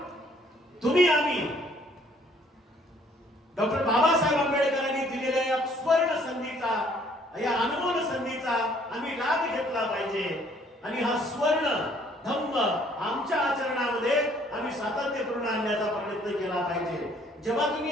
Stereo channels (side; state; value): both; normal; correlation 0.61